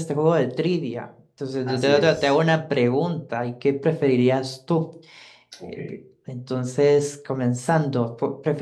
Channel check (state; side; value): identical; both; correlation 1.00